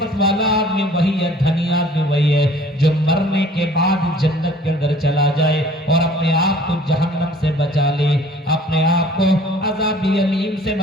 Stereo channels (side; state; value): both; normal; correlation 0.52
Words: वाला आदमी वही है, धनी आदमी वही है जो मरने के बाद जन्नत के अंदर चला जाए और अपने आप को जहन्नम से बचा ले, अपने आप को अज़ाब अलीम से